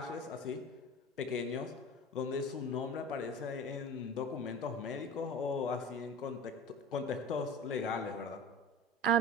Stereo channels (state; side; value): normal; both; correlation 0.35